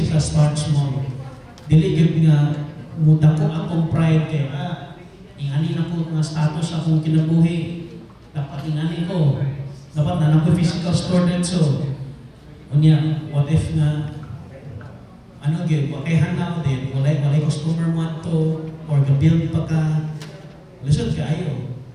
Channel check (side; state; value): both; identical; correlation 1.00